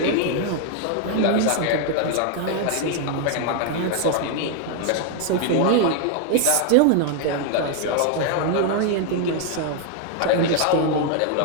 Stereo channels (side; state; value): both; different; correlation 0.00